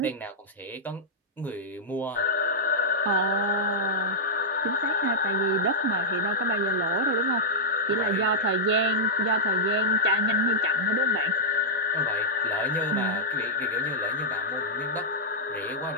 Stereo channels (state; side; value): normal; both; correlation -0.08